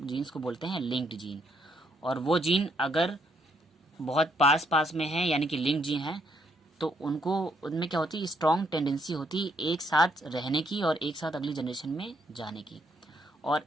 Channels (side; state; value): both; normal; correlation 0.72